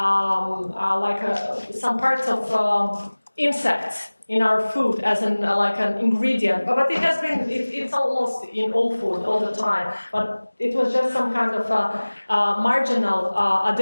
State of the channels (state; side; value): inverted; both; correlation -1.00